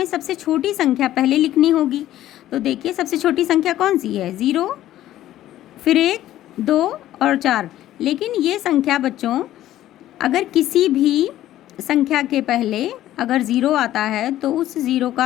सबसे छोटी संख्या पहले लिखनी होगी। तो देखिए सबसे छोटी संख्या कौन सी है? 0, फिर 1, 2 और 4। लेकिन ये संख्या बच्चों अगर किसी भी संख्या के पहले अगर 0 आता है तो उस 0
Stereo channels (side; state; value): right; quieter; 13.5 dB